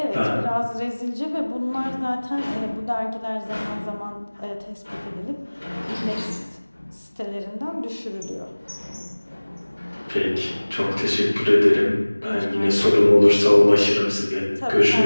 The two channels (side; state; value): both; inverted; correlation -1.00